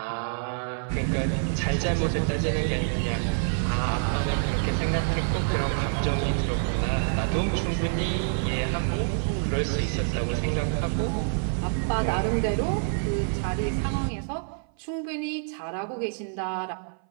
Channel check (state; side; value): silent; left; 57 dB below the other